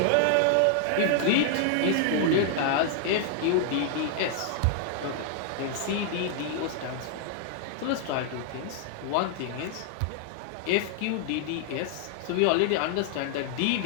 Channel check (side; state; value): both; different; correlation -0.01